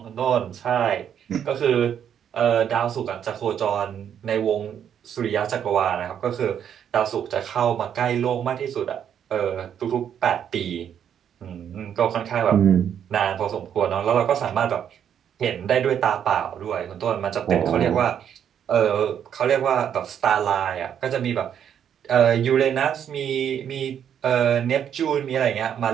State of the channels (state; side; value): quieter; left; 8.9 dB